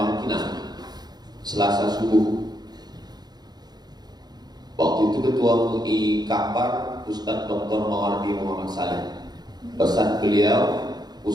Selasa subuh. Waktu itu Ketua MUI Kapar Ustadz Dr. Mawardi Muhammad Saleh. Pesan beliau,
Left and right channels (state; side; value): late; left; 0.20 ms